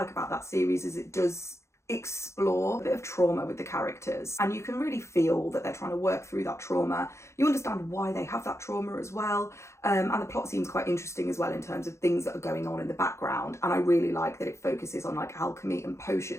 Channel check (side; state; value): right; late; 0.14 ms